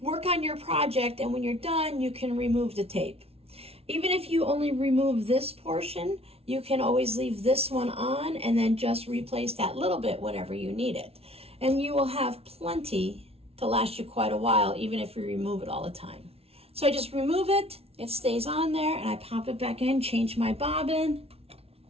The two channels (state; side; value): late; left; 0.29 ms